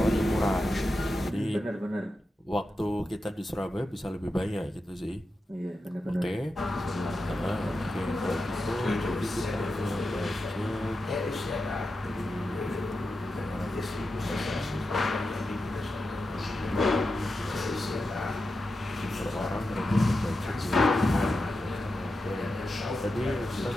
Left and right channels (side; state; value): both; normal; correlation 0.90